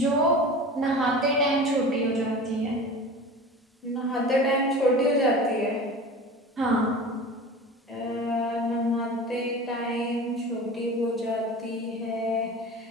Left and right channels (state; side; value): normal; both; correlation 0.35